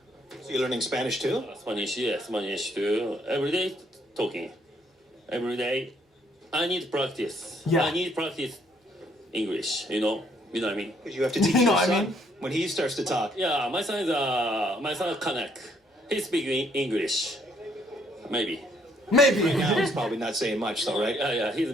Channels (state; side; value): normal; both; correlation 0.67